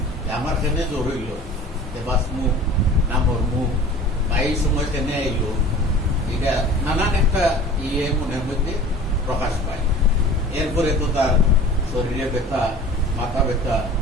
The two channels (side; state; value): both; normal; correlation 0.42